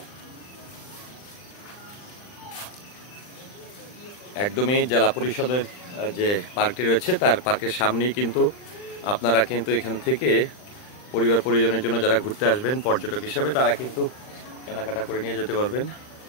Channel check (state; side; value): late; right; 39 ms